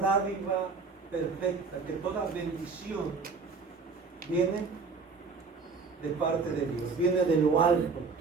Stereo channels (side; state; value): left; quieter; 4.7 dB